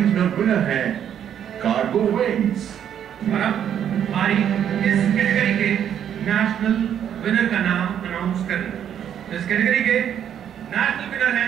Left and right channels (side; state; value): left; quieter; 9.4 dB